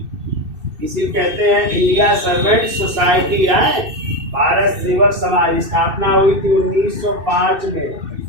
इसी कहते हैं इंडिया सर्वेंट सोसाइटी है। भारत सेवक समाज स्थापना हुई थी 1905 में।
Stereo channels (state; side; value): late; left; 2.6 ms